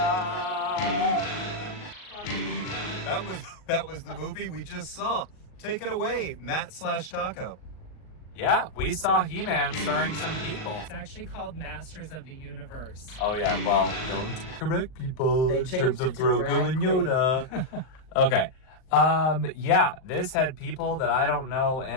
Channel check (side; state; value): right; late; 38 ms